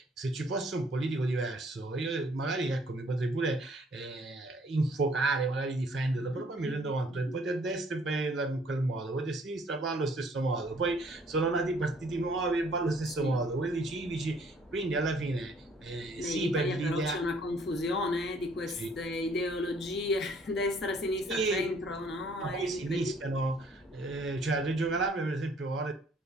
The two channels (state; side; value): normal; both; correlation 0.60